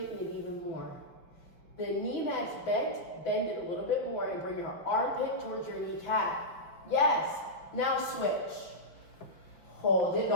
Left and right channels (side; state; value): right; late; 5.6 ms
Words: it even more. The knee that's bent, bend it a little bit more and bring your armpit towards your kneecap. Yes. Now switch. Hold it.